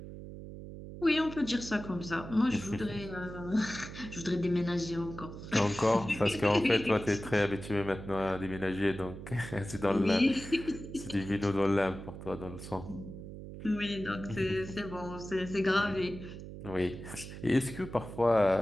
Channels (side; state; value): right; noise; hum, 11 dB below the sound